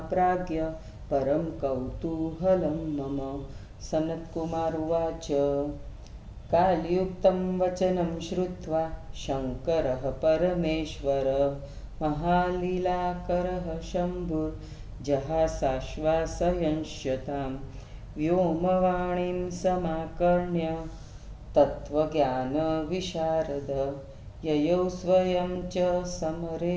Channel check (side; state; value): both; identical; correlation 1.00